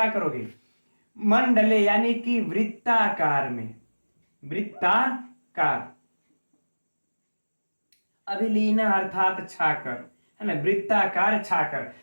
करोगे, मंडले यानी कि वृत्ताकार में, वृत्ताकार, अभिलीन अर्थात छाकर, है ना, वृत्ताकार छाकर।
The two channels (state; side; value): inverted; both; correlation -1.00